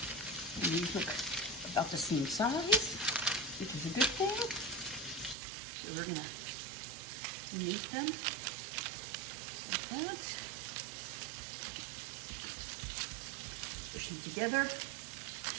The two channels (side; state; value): left; drops out; at 5.4 s